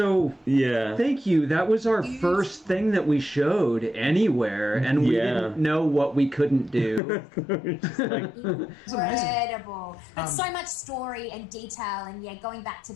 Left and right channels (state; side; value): drops out; right; at 7.0 s